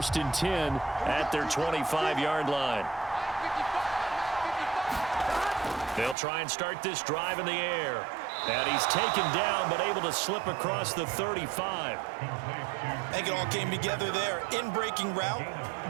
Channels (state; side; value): drops out; left; at 6.2 s